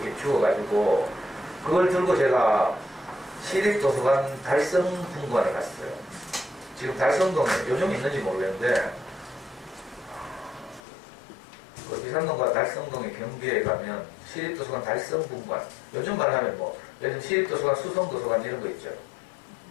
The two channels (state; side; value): drops out; right; at 10.8 s